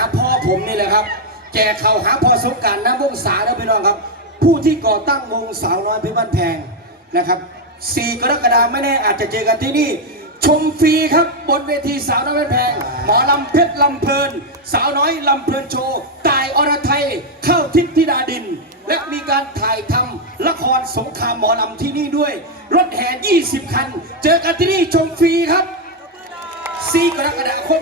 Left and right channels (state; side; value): normal; both; correlation 0.02